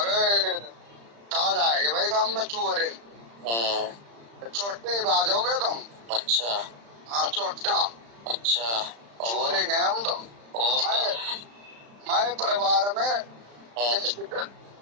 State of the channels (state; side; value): late; left; 35 ms